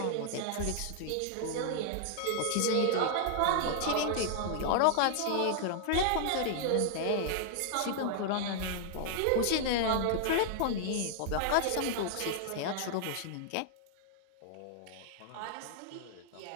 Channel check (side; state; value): both; different; correlation 0.00